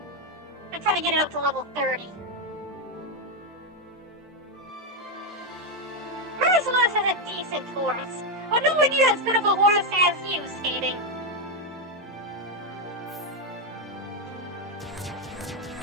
I'm trying to get it up to level 30. Merciless is a decent horse, but nowhere near as good of a horse as you, Skating.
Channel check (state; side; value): normal; both; correlation 0.04